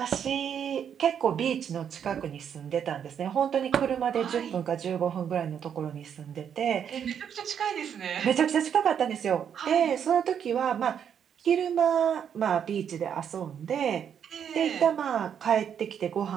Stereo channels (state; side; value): quieter; left; 8.3 dB